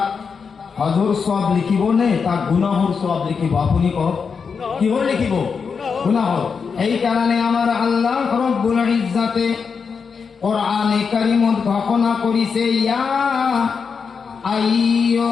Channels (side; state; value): right; quieter; 5.7 dB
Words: হজর সব লিখিব নে তাক গুনাহর সব লিখিব? আপনি কওক, কিহর লিখিব? গুনাহর। এই কারণে আমার আল্লাহ রব্বুল ইজ্জাতে কোরআনে কারীমত ঘোষণা করিছে, ইয়া